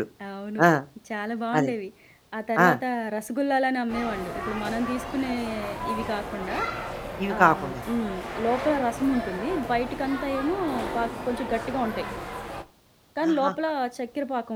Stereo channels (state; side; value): identical; both; correlation 1.00